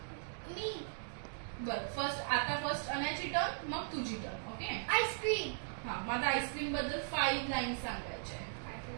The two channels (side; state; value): left; silent; digital silence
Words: मी. बर, फर्स्ट अनयाची टर्न, मग तुझी टर्न. ओके. आईस्क्रीम. हा, माझा आईस्क्रीम बद्दल 5 लाईन्स